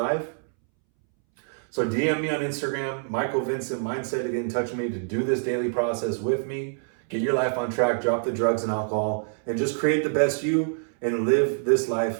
So DM me on Instagram, MichaelVincentMindset, to get in touch with me to do this daily process with me. Get your life on track, drop the drugs and alcohol, and just create the best you and live this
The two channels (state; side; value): silent; left; 61 dB below the other